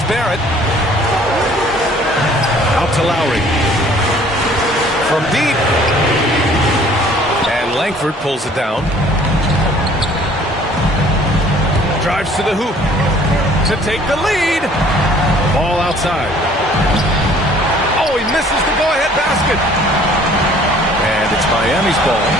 Barrett. Out to Lowry. From deep. And Langford pulls it down. Drives to the hoop to take the lead. Ball outside. Oh, he misses the go-ahead basket. And it's Miami's ball.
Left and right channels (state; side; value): normal; both; correlation 0.55